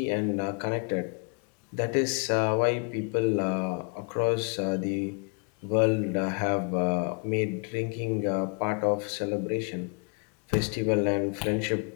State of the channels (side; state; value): right; quieter; 38.8 dB